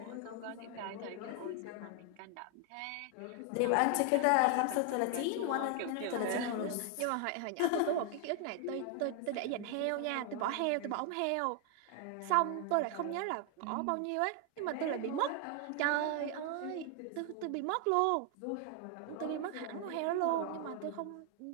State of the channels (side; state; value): both; different; correlation 0.00